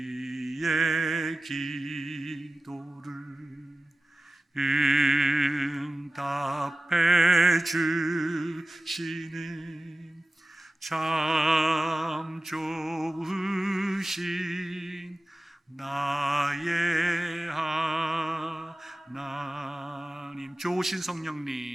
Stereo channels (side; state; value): both; normal; correlation 0.96